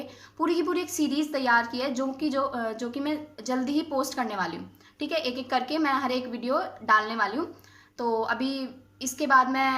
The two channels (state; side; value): identical; both; correlation 1.00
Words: पूरी की पूरी एक सीरीज़ तैयार की है जो कि मैं जल्दी ही पोस्ट करने वाली हूँ। ठीक है, एक एक करके मैं हर एक वीडियो डालने वाली हूँ। तो अभी इसके बाद मैं